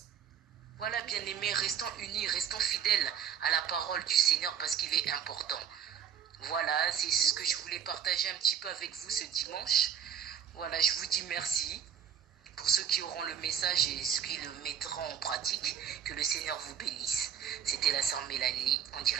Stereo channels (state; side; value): quieter; left; 8.5 dB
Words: Voilà, bien aimé, restons unis, restons fidèles à la parole du Seigneur parce qu'il est important. Voilà, c'est ce que je voulais partager un petit peu avec vous ce dimanche. Voilà, je vous dis merci pour ceux qui auront le message et ceux qui le mettront en pratique. Que le Seigneur vous bénisse. C'était la sœur Mélanie en